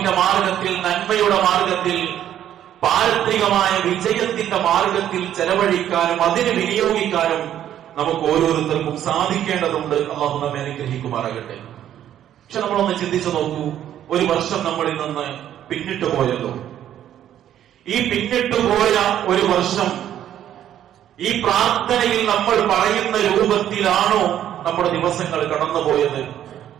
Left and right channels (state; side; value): quieter; left; 11.0 dB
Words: മാർഗത്തിൽ, നന്മയുടെ മാർഗത്തിൽ, പാരത്രികമായ വിജയത്തിന്റെ മാർഗത്തിൽ ചെലവഴിക്കാനും അതിന് വിനിയോഗിക്കാനും നമുക്ക് ഓരോരുത്തർക്കും സാധിക്കേണ്ടതുണ്ട്. അല്ലാഹു നമ്മെ അനുഗ്രഹിക്കുമാറാകട്ടെ. പക്ഷെ നമ്മളൊന്ന് ചിന്തിച്ചു നോക്കൂ, ഒരു വർഷം നമ്മളിൽ നിന്ന് പിന്നിട്ട് പോയല്ലോ. ഈ പിന്നിട്ട് പോയ ഒരു വർഷം ഈ പ്രാർത്ഥനയിൽ നമ്മൾ പറയുന്ന രൂപത്തിലാണോ നമ്മുടെ ദിവസങ്ങൾ കടന്നുപോയത്?